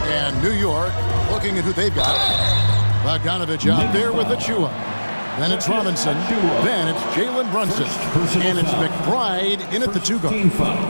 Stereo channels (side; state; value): both; inverted; correlation -1.00